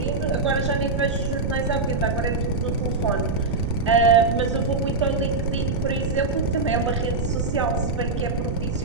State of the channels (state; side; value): noise; right; rumble, 2 dB below the sound